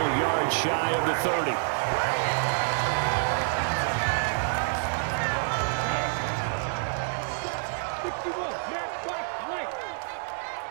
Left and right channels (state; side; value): silent; left; digital silence